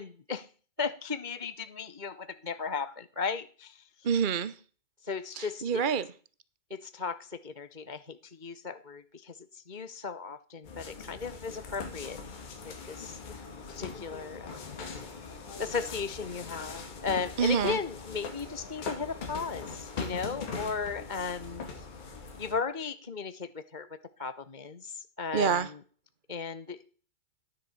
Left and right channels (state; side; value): late; left; 2.2 ms